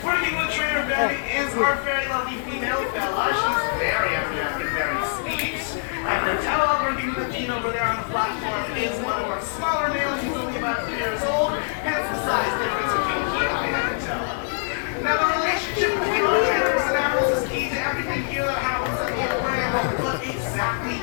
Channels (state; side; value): silent; right; 63 dB below the other